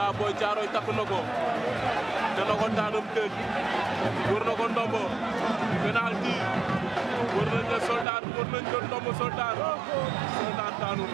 Boy Thiaroye takk na ko dana ko daanam tëj wër na ko ndombo penalty wër nañ la Soldat wër nañ ko ndombo Soldat daanu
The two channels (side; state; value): left; drops out; at 8.1 s